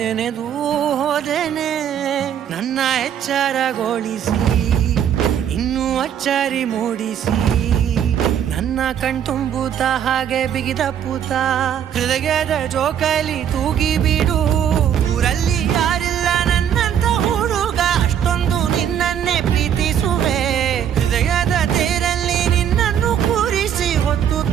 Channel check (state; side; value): quieter; left; 9.2 dB